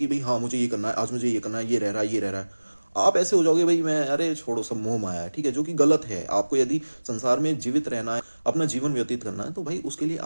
कि भाई हाँ मुझे ये करना है, आज मुझे ये करना है, ये रह रहा है, ये रह रहा है, आप ऐसे हो जाओगे भाई मैं, अरे छोड़ो सब मोह माया है, ठीक है, जो कि गलत है। आपको यदि संसार में जीवित रहना है, अपना जीवन व्यतीत करना है, तो भाई उसके लिए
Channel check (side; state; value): both; inverted; correlation -1.00